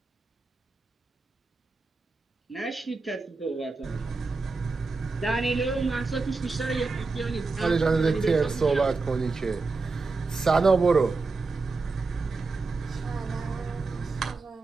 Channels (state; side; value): quieter; left; 3.9 dB